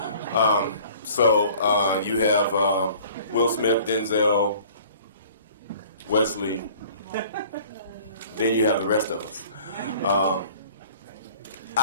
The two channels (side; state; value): both; inverted; correlation -0.50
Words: So you have Will Smith, Denzel, Wesley. Then you have the rest of us.